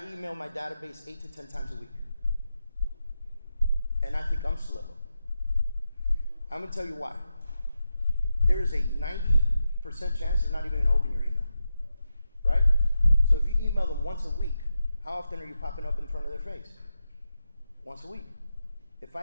email my database 8 to 10 times a week. And I think I'm slow. I'm going to tell you why. There is a 90% chance they're not even going to open your email. Right? So if you email them once a week, how often are you popping up in front of their face? Once a week. If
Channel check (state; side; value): inverted; both; correlation -0.88